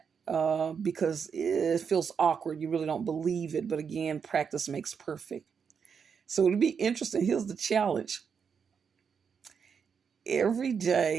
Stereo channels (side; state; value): left; quieter; 6.5 dB